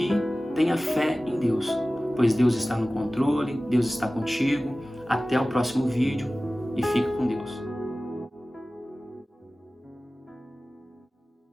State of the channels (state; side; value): normal; both; correlation 0.97